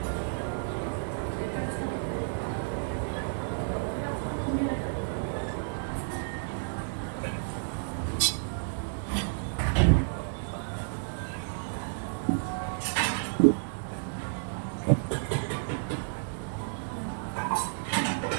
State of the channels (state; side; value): silent; left; digital silence